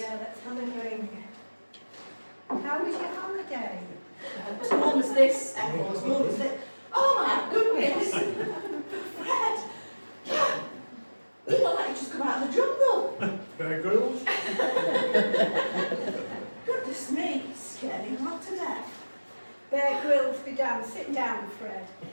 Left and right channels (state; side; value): inverted; both; correlation -1.00